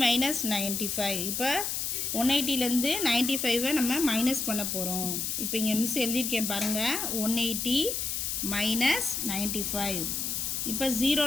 minus 95. இப்போ 180லேருந்து 95ஐ நம்ம மைனஸ் பண்ண போகிறோம். இப்போ இங்கே மிஸ் எழுதியிருக்கேன் பாருங்கள், 180 மைனஸ் 95. இப்போ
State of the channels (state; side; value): noise; left; hiss, 1 dB below the sound